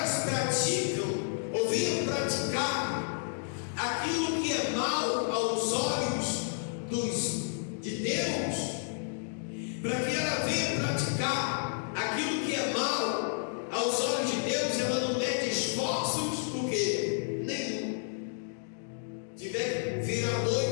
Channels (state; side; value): silent; right; digital silence